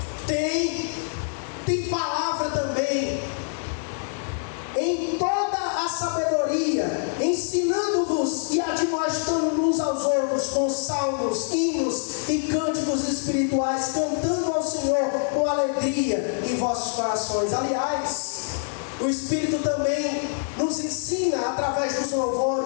tem palavra também. Em toda a sabedoria, ensinando-vos e admoestando uns aos outros com salmos, hinos e cânticos espirituais, cantando ao Senhor com alegria em vossos corações. Aliás, o Espírito também nos ensina através dos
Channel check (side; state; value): right; silent; digital silence